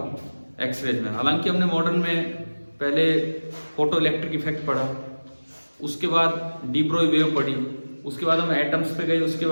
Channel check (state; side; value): inverted; both; correlation -1.00